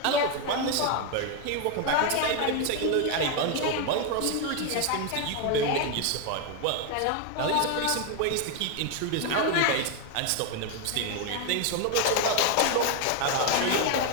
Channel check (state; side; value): different; both; correlation 0.01